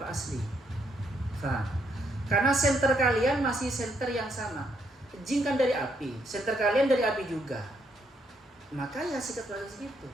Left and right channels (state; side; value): normal; both; correlation 0.74